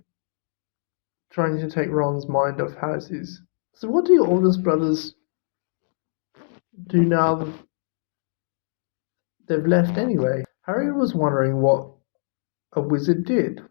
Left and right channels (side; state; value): right; silent; digital silence